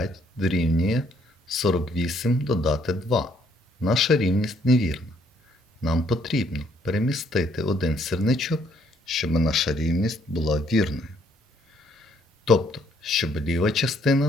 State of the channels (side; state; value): both; normal; correlation 0.67